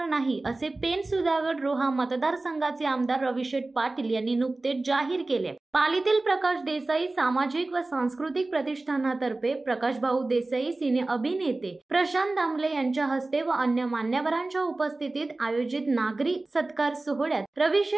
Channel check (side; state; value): left; quieter; 3.1 dB